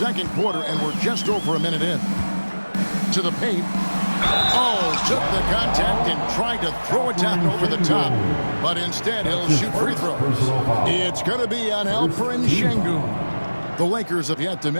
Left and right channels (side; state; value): both; inverted; correlation -1.00